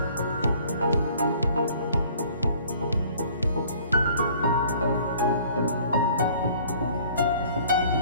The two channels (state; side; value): inverted; both; correlation -0.53